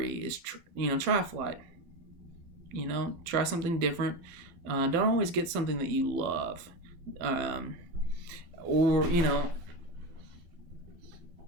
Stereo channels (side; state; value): left; late; 12 ms